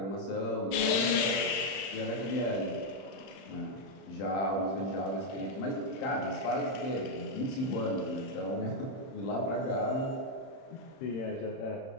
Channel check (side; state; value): right; late; 31 ms